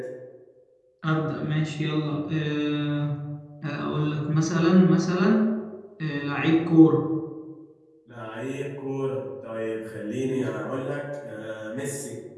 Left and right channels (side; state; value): both; identical; correlation 1.00